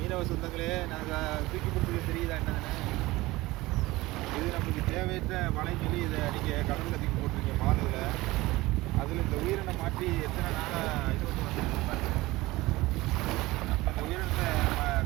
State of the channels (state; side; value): quieter; left; 19.7 dB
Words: மீனவ சொந்தங்களே, நாங்கள் தூக்கி கொடுத்துக்க தெரியுதா என்னதுன்னு? இது நம்மளுக்கு தேவையற்ற வலைன்னு சொல்லி இதை நீங்கள் கடலில் தூக்கி போட்டிருக்கீங்க மாலுவில். அதில் இந்த உயிரினை மாற்றி எத்தனை நாளாக இது வந்து வந்துருக்கு பாருங்க. நம்ம இந்த உயிரினத்தை